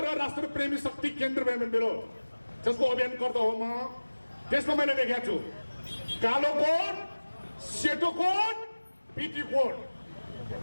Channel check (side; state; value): both; inverted; correlation -1.00